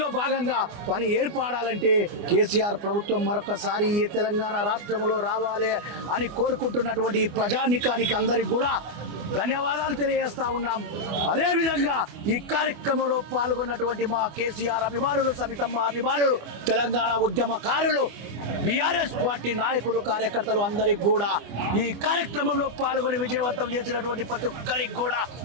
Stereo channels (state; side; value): late; left; 24 ms